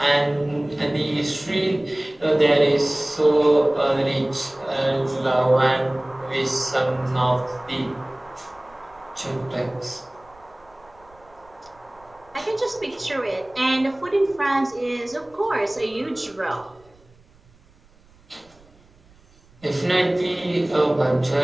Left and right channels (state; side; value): noise; right; rumble, 29 dB below the sound